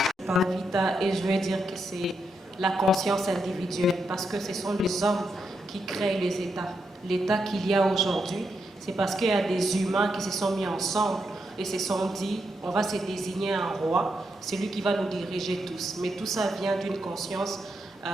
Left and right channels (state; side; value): normal; both; correlation 0.82